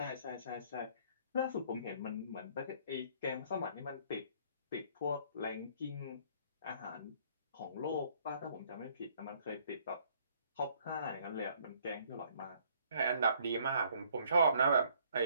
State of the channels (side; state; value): both; inverted; correlation -0.62